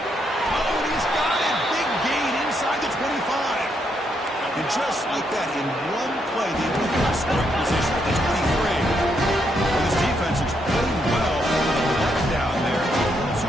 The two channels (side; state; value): both; normal; correlation 0.77